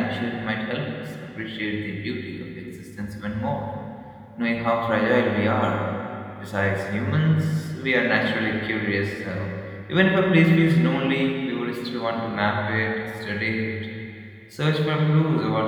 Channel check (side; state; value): both; identical; correlation 1.00